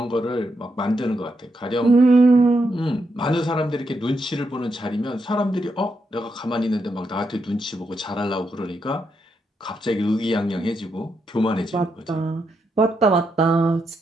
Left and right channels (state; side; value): normal; both; correlation 0.82